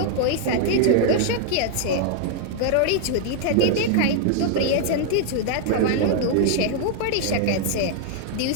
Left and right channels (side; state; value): both; different; correlation 0.00